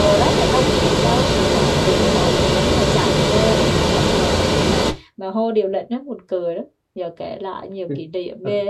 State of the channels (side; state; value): both; identical; correlation 1.00